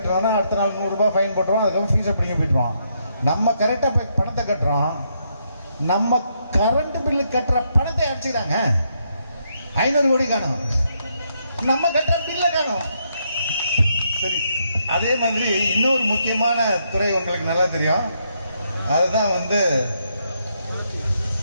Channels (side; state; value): both; inverted; correlation -0.77